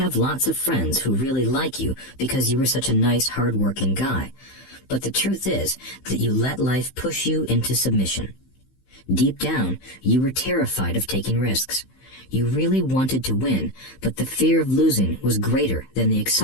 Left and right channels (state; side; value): late; right; 15 ms